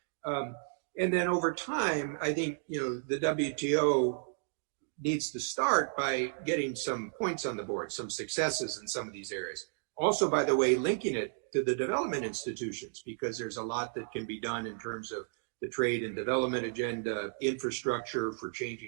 And then over time, I think, the WTO needs to start by getting some points on the board, some successes in some of these areas. Also, by the way, linking it to the development institutions, because there's a lot that can be done in terms of the trade and development agenda, infrastructure for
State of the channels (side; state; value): left; silent; digital silence